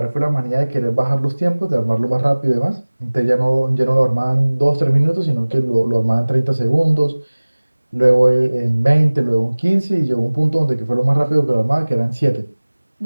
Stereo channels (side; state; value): both; inverted; correlation -1.00